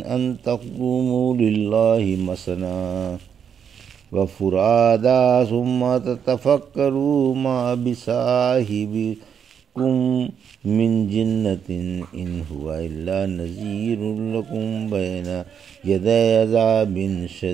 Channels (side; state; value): left; quieter; 7.7 dB